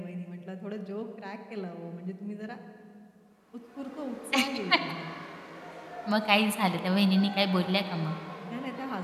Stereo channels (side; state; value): both; identical; correlation 1.00